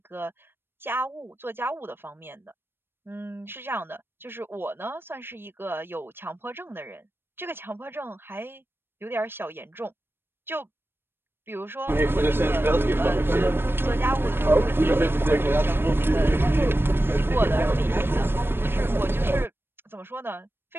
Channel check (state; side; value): late; left; 0.10 ms